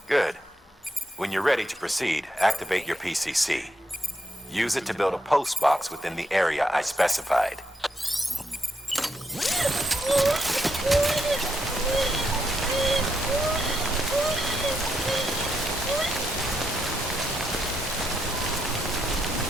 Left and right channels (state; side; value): normal; both; correlation 0.80